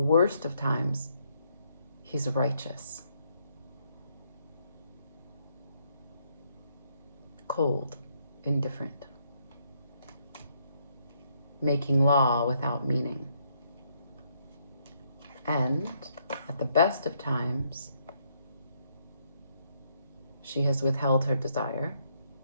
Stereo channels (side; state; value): both; inverted; correlation -0.73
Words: of times, he's righteous. Cold, indifferent. Making law without meaning. And at the best of times, she has withheld her desire.